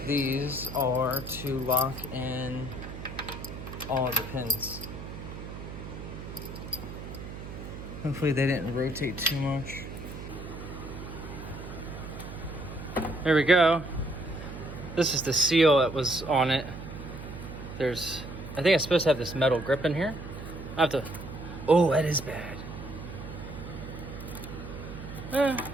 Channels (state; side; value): noise; right; hum, 10 dB below the sound